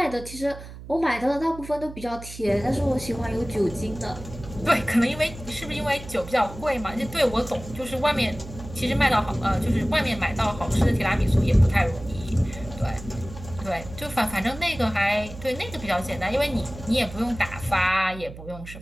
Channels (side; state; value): right; noise; hum, 14 dB below the sound